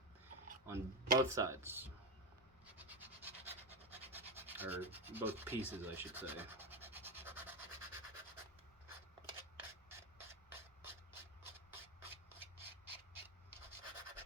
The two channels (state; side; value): normal; both; correlation 0.13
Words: on both sides, or both pieces, I should say.